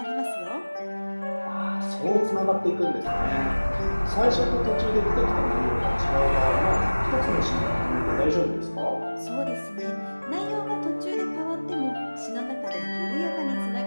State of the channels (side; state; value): both; inverted; correlation -1.00